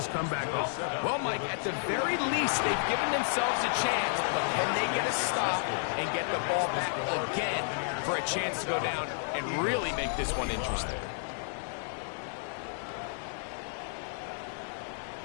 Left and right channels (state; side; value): silent; right; 57 dB below the other